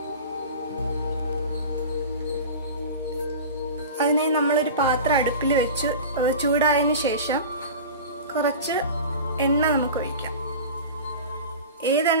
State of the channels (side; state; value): both; inverted; correlation -0.33